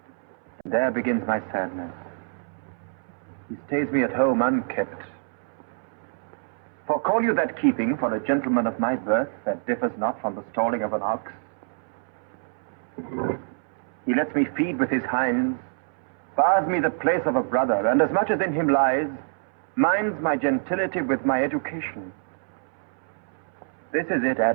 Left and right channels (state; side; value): silent; left; 61 dB below the other